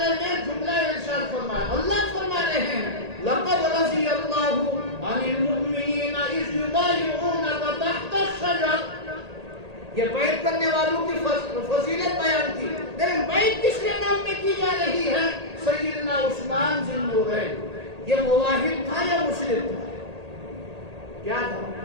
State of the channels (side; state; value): left; late; 1.8 ms